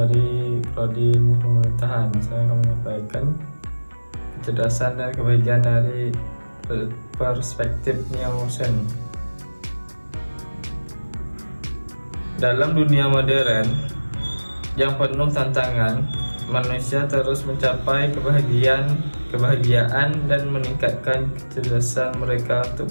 Prodi Ilmu Pemerintahan. Saya akan menyampaikan kecerdasan dan kebahagiaan dari perspektif Nielsen. Dalam dunia modern yang penuh tantangan, manusia terus mencapai kebahagiaan dan meningkatkan kecerdasan mereka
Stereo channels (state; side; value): inverted; both; correlation -1.00